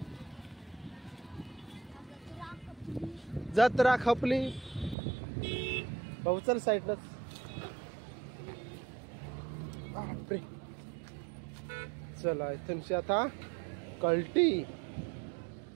जत्रा खपली भाऊ चल साईडलाच. बापरे. चला इथूनशी आता कल्टी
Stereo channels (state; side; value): drops out; left; at 5.0 s